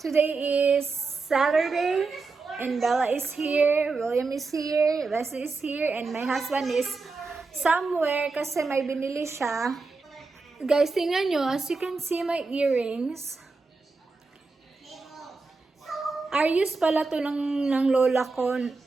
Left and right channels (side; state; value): left; quieter; 4.0 dB